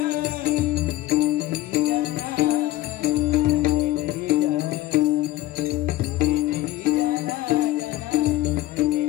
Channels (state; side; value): quieter; right; 15.6 dB